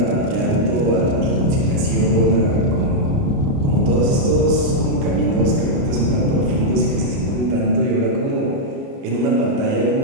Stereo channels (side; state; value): left; late; 29 ms